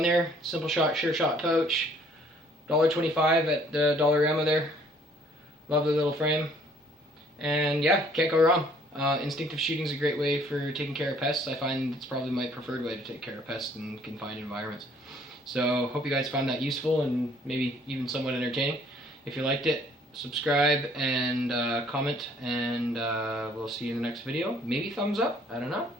there. Simple shot, sure shot pouch. $1.25 at the Dollarama there. Lovely little frame. And yeah, can't go wrong. Instinctive shooting is a great way for taking care of pests. I find it's probably my preferred way to take care of pests in confined environments. So hope you guys found that useful and maybe even somewhat entertaining. If you liked it, subscribe and comment, and we'll see you in the next video. Maybe thumbs up, I don't know,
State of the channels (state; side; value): normal; both; correlation 0.60